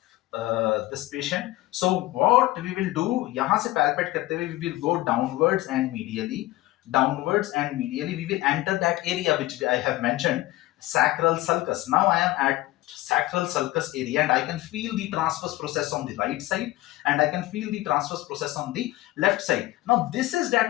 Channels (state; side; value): quieter; right; 17.8 dB